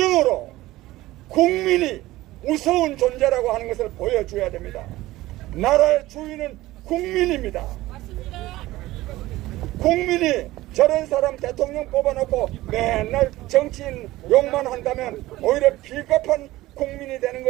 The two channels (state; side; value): quieter; left; 17.4 dB